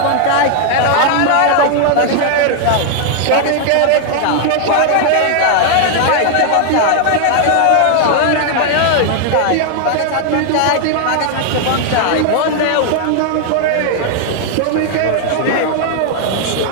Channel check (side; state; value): both; different; correlation 0.00